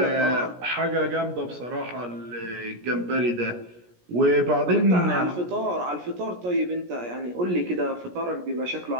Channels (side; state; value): left; late; 17 ms